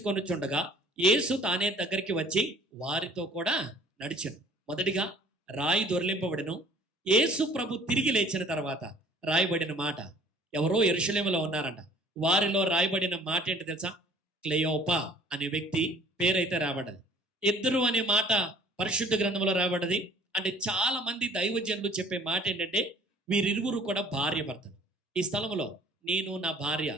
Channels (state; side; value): normal; both; correlation 0.53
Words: యేసు తానే దగ్గరికి వచ్చి వారితో కూడా నడిచెను. మొదటిగా రాయి దొర్లింపబడెను. యేసు ప్రభు తిరిగి లేచిన తర్వాత రాయబడిన మాట, ఎవరో యెరూషలేములో ఉన్నారంట. వారిలో రాయబడిన మాట ఏంటి తెలుసా? క్లెయోపా అనే వ్యక్తి పేరైతే రాబడ్డది. ఇద్దరు అనే మాట పరిశుద్ధ గ్రంథంలో రాబడ్డది. అంటే చాలా మంది దైవజనులు చెప్పే మాట ఏంటంటే వీరిరువురు కూడా భార్య భర్తలు. ఈ స్థలంలో నేను నా భార్య